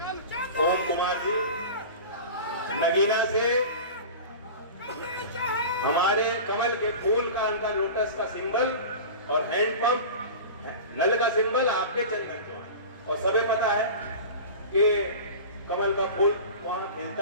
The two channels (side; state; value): both; inverted; correlation -0.34